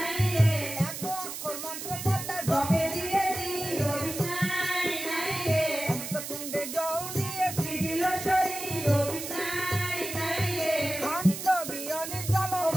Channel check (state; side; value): noise; right; hiss, 7 dB below the sound